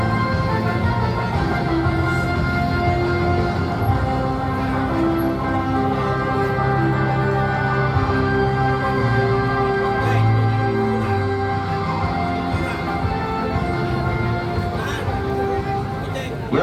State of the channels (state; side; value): identical; both; correlation 1.00